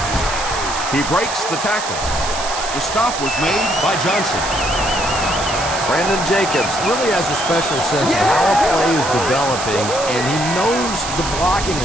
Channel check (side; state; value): right; noise; hiss, 7 dB below the sound